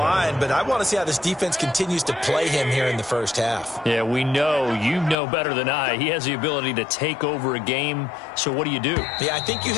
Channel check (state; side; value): drops out; right; at 5.2 s